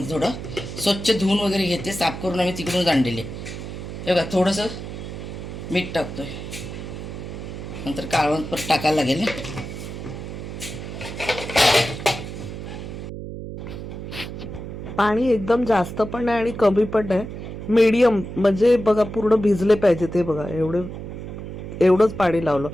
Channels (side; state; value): right; noise; hum, 9 dB below the sound